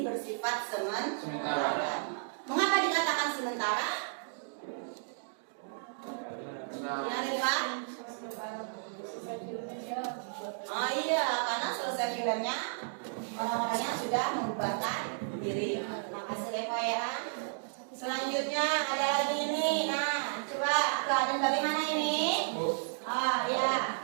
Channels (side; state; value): left; silent; digital silence